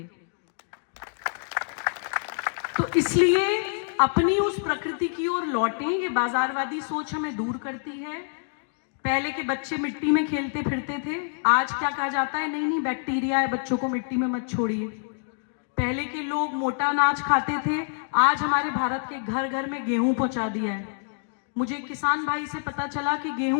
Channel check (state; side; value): silent; right; digital silence